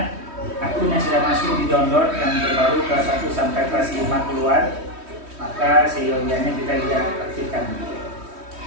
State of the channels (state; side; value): late; left; 3.1 ms